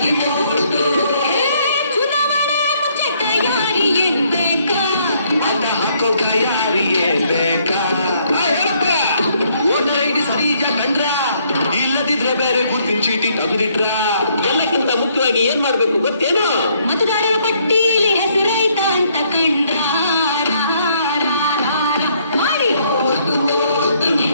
ಚುನಾವಣೆ ಮುಂಚೆ ತಯಾರಿ ಇರ್ಬೇಕಾ ಮತ ಹಾಕೋ ತಯಾರಿಯೇ ಬೇಕಾ ವೋಟರ್ ಐಡಿ ಸರಿಜ ಕಂಡ್ರ ಇಲ್ಲದಿದ್ರೆ ಬೇರೆ ಗುರ್ತಿನ ಚೀಟಿ ತಂದಿಟ್ರ ಎಲ್ಲಕ್ಕಿಂತ ಮುಖ್ಯವಾಗಿ ಏನ್ ಮಾಡ್ಬೇಕು ಗೊತ್ತೇನೋ ಮತದಾರರ ಪಟ್ಟಿಯಲ್ಲಿ ಹೆಸರೈತ ಅಂತ ಕಂಡ್ರ ಮಾಡಿ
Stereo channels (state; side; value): inverted; both; correlation -0.68